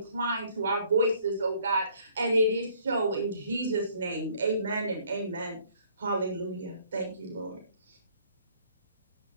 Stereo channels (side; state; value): both; inverted; correlation -0.61